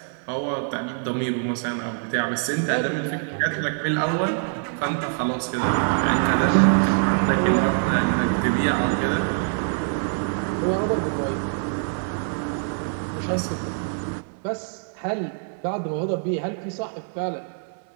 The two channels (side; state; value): left; silent; 60 dB below the other